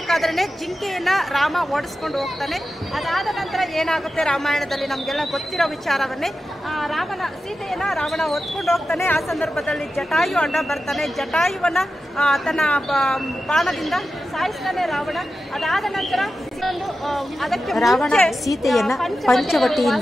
ಜಿಂಕೆಯನ್ನ ರಾಮ ಓಡಿಸ್ಕೊಂಡು ಹೋಗ್ತಾನೆ. ಅದಾದ ನಂತರ ಏನಾಗುತ್ತೆ ರಾಮಾಯಣದಲ್ಲಿ ನಮಗೆಲ್ಲ ಗೊತ್ತಿರೋ ವಿಚಾರವನ್ನೇ. ಸೀತೆಯನ್ನ ರಾವಣ ಹೊತ್ಕೊಂಡು ಹೋಗ್ತಾನೆ. ಆ ಸಂದರ್ಭದಲ್ಲಿ ಜಟಾಯು ಅಡ್ಡ ಬರ್ತಾನೆ. ಜಟಾಯುವನ್ನ ತನ್ನ ಬಾಣದಿಂದ ಸಾಯಿಸ್ತಾನೆ ರಾವಣ. ಅದಾದ ನಂತರ ರಾವಣ ಸೀತೆಯನ್ನ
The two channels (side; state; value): both; normal; correlation 0.92